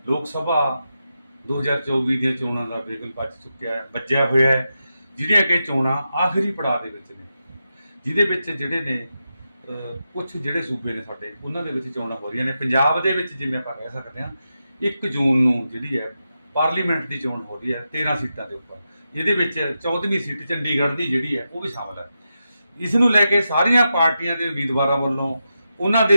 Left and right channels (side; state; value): both; inverted; correlation -0.88